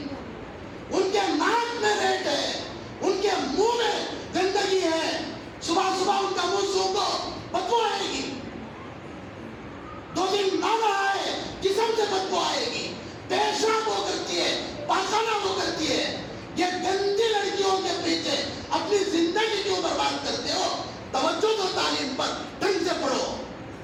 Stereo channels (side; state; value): both; identical; correlation 1.00